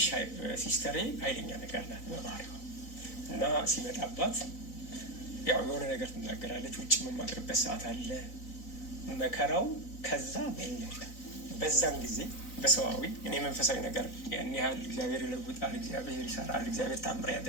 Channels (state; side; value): late; right; 4.0 ms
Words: ሲስተሬ ኃይለኛ ነገር ናት በባህሪዋ እና ሲመጣባት ያው የሆነ ነገር ትናገራለች። ውጭ የምማድርበት ሰዓት አለ መከራው። ከዛ በለጠ። በዛን ጊዜ በሰዋዊ እኔ መንፈሳዊ ነገር ያን ያህል እግዚአብሔር ይለውጣል፣ እግዚአብሔር ይሰራል፣ እግዚአብሔር ታምር